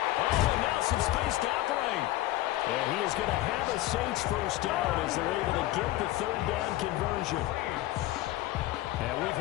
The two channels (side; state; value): right; quieter; 16.2 dB